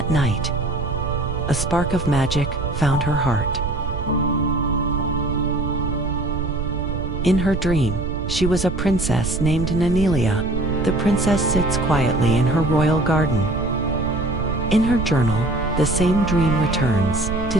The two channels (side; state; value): right; noise; rumble, 5 dB below the sound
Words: night, a spark of magic found her heart. In her dream, she was a princess named Nonelia. The princess sits quietly in her royal garden. In her journal, the same dream returns, to